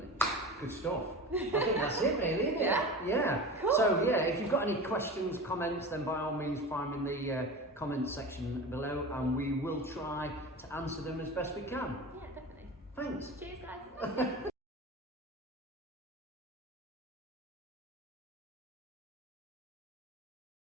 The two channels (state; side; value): normal; both; correlation 0.31